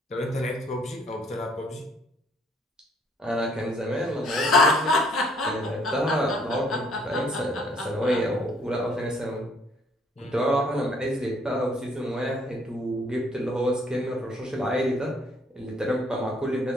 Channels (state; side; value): normal; both; correlation 0.63